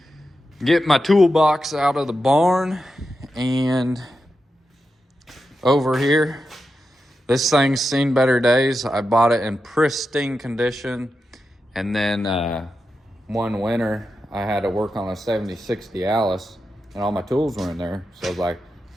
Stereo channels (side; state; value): both; normal; correlation 0.89